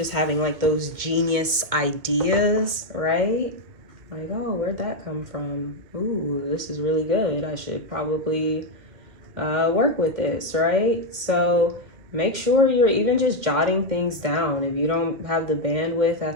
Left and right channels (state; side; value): late; left; 2.2 ms